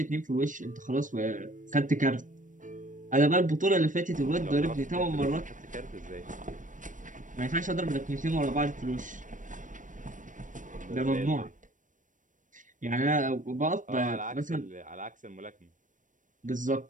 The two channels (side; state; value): left; late; 0.37 ms